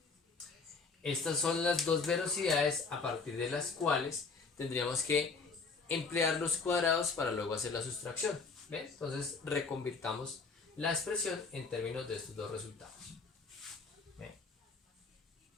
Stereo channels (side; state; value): right; quieter; 4.5 dB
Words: Estas son las dos velocidades a partir de las cuales tendríamos que emplear los cuadrados para luego hacer la sustracción. ¿Ven? Entonces reconvirtamos la expresión en términos de estos dos resultados. ¿Ven?